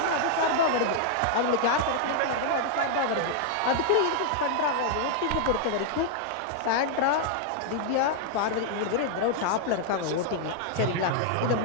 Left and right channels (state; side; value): different; both; correlation -0.01